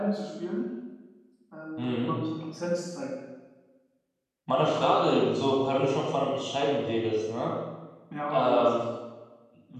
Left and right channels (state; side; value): identical; both; correlation 1.00